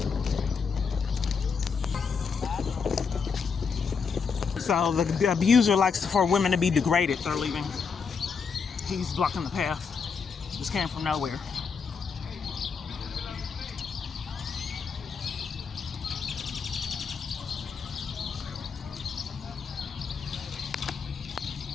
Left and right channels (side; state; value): right; quieter; 5.7 dB